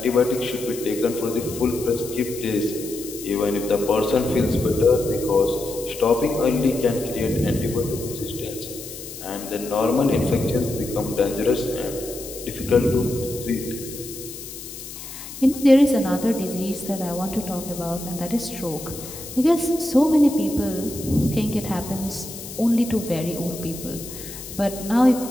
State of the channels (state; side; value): noise; left; hiss, 12 dB below the sound